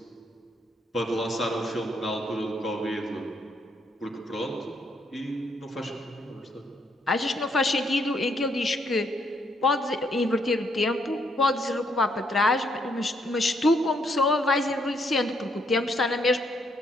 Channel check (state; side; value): normal; both; correlation 0.72